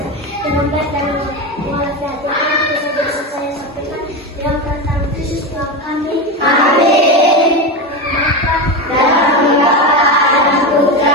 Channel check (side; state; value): both; normal; correlation 0.17